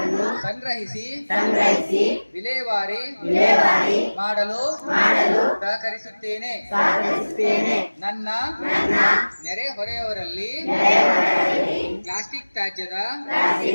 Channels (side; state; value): both; inverted; correlation -1.00